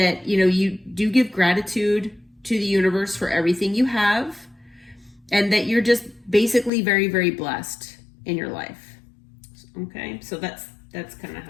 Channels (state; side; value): drops out; right; at 6.7 s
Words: you do give gratitude to the universe for everything you have, and that you're just basically very, very blessed in your life. Okay, so that's kind of